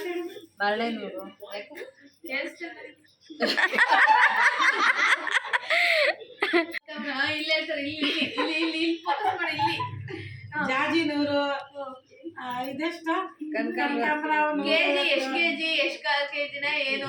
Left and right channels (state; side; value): identical; both; correlation 1.00